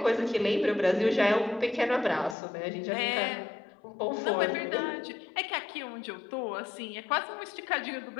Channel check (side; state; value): right; drops out; at 2.4 s